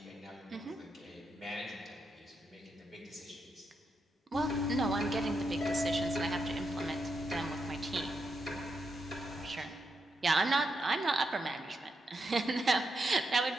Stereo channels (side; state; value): both; normal; correlation 0.83